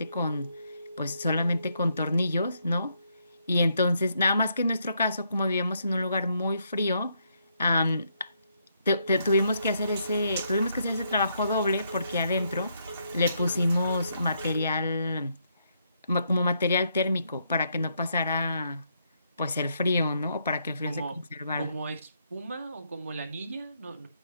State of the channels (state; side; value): inverted; both; correlation -0.75